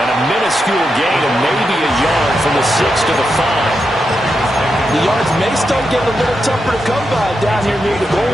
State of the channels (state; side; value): normal; both; correlation 0.86